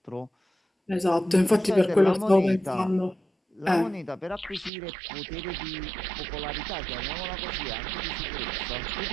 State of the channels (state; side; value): drops out; left; at 4.7 s